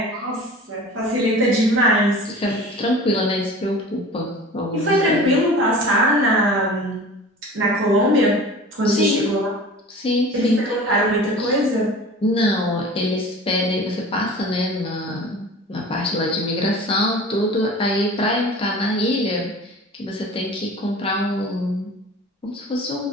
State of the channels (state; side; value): normal; both; correlation 0.40